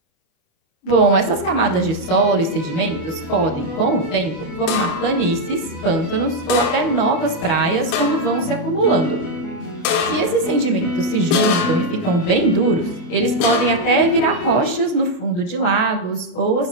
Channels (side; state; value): right; late; 28 ms